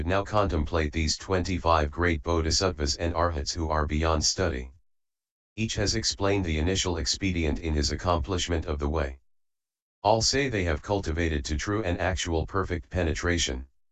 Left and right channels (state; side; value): identical; both; correlation 1.00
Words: now contemplate these 25 great bodhisattvas and arhats who are beyond study. Each has explained the initial expedient in his accomplishment of the way. All say they have cultivated to true and actual perfect penetration.